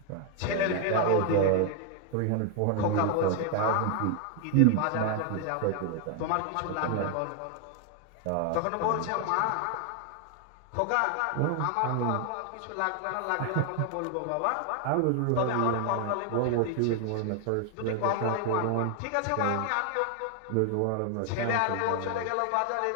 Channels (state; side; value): different; both; correlation 0.00